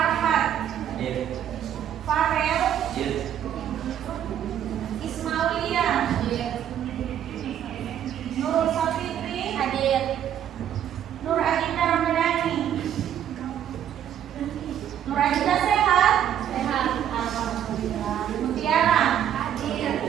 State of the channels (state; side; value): quieter; left; 10.1 dB